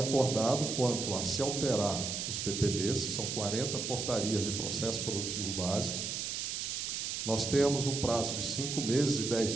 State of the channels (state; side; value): noise; right; hiss, 3 dB below the sound